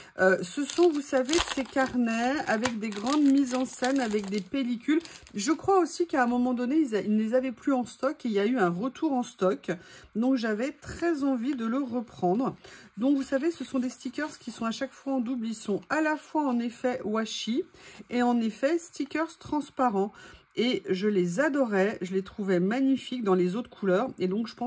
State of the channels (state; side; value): identical; both; correlation 1.00